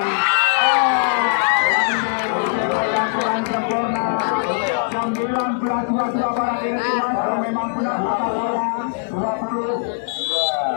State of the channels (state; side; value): silent; right; 60 dB below the other